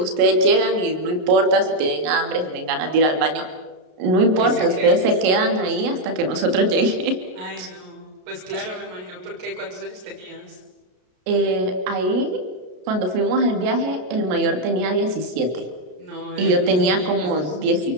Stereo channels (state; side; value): late; left; 33 ms